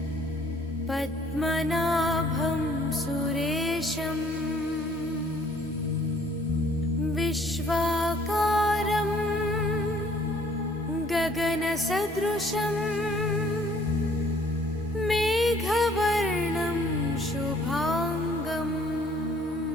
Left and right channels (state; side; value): normal; both; correlation 0.60